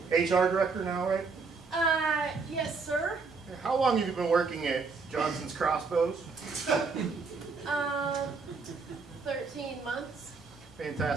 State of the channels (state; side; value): quieter; left; 4.6 dB